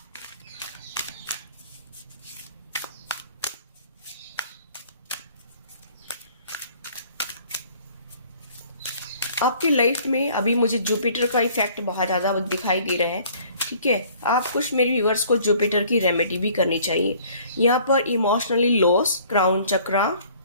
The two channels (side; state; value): both; inverted; correlation -0.55